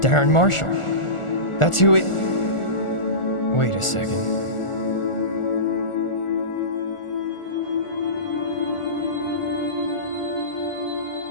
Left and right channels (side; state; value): right; late; 1.4 ms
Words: Darren Marshall. That's who it... Wait a second.